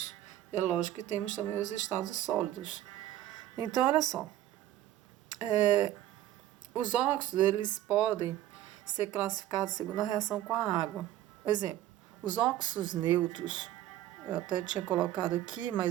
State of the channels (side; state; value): left; quieter; 13.5 dB